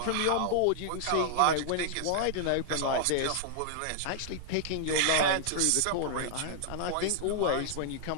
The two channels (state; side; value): different; both; correlation -0.01